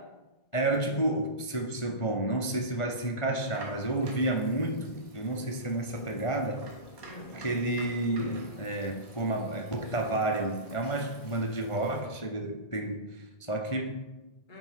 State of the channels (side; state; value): right; late; 1.5 ms